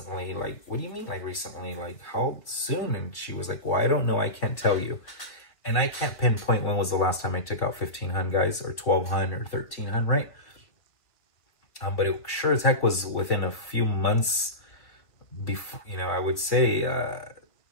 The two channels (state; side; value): late; right; 1.5 ms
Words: Like, what do you mean, like, recently? Like, how soon? And she was like, well, I don't know. I can't tell you. And I can't pinpoint when was the last time I took out 1,500, guys, or 1,200 or 1,300, right? But it sure as heck was within a few months before, you know, I would say